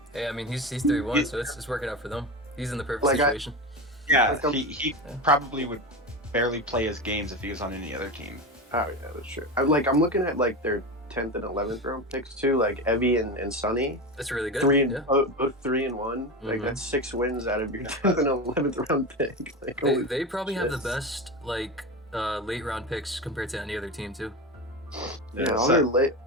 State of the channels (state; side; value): normal; both; correlation 0.23